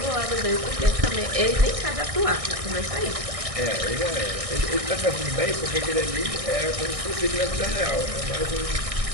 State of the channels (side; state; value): left; late; 1.6 ms